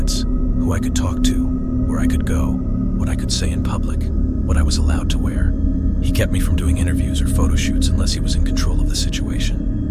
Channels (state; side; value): identical; both; correlation 1.00